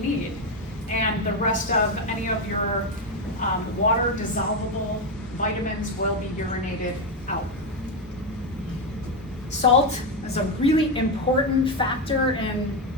need? And the rest of any of your water dissolvable vitamins will be urinated out. Salt is a really important factor in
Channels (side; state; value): both; normal; correlation 0.09